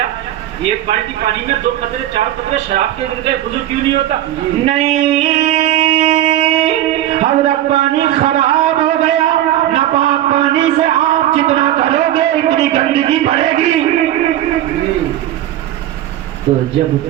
ایک بالٹی پانی میں 2 قطرے 4 قطرے شراب کے گر گئے, وضو کیوں نہیں ہوتا؟ نہیں, حضرت پانی خراب ہو گیا. ناپاک پانی سے آپ جتنا کرو گے اتنی گندگی بڑھے گی. تو جب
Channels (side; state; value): left; quieter; 13.0 dB